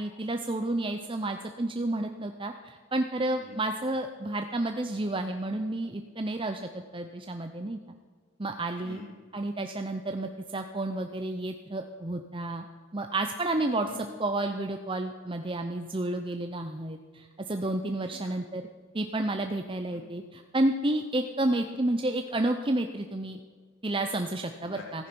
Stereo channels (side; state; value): both; normal; correlation 0.61